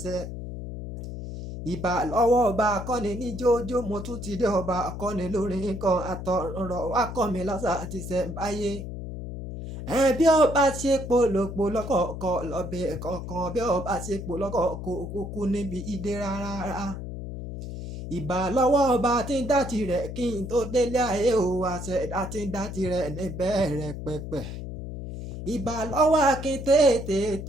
ṣẹ. Ìbà lọ́wọ́ ọba akọ́ni ní jójó mo tún ti dé ọba akọ́ni lórin kan àtọ̀rọ̀ wá kọ́ mi lọ́sà àti ṣẹ̀ǹbáyé. Bí ọba ṣe polòpò lọ́kọ̀ọ̀kọ̀ lọ́bẹ̀ kọ̀ọ̀kan bí ọba ṣe polọ́kọ̀ọ̀kọ̀ kúkú níbi ìdè rárá. Ìbà lọ́wọ́ ọba tí ń dá tirẹ̀ kí n tó délé ayé o àṣẹ̀dá tí ń dá tirẹ̀ níbẹ̀rẹ̀ pẹ̀pẹ̀. Ìbà lọ́wọ́ akin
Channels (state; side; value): noise; left; hum, 8 dB below the sound